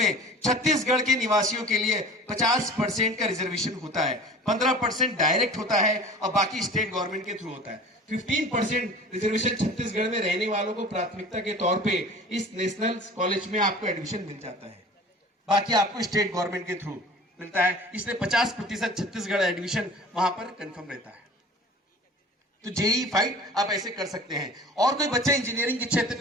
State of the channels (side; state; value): both; normal; correlation 0.42